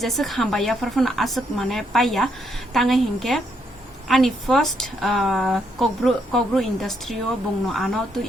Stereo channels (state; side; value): normal; both; correlation 0.75